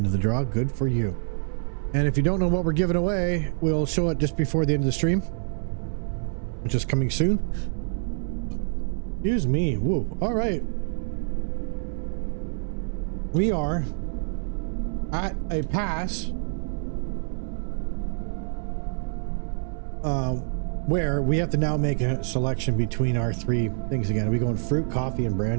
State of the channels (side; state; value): left; silent; 61 dB below the other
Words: the draw. Good for you. And if you don't know what we're giving away, we'll show it just before the end of the stream, which is coming soon. Excuse me. Woo. All right. We are at a pass where we have to now make a selection between our three things again. Are we going fruit, coffee, and